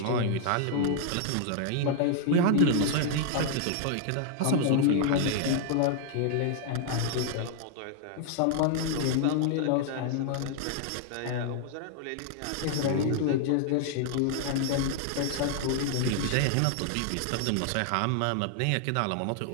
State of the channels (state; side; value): different; both; correlation -0.01